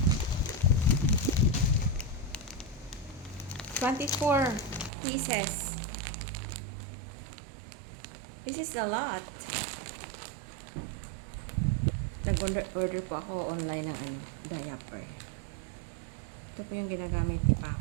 $24 pieces. This is a lot. Nag-order po ako online ng diaper. Ito po yung ginagamit ni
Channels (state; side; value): drops out; left; at 4.9 s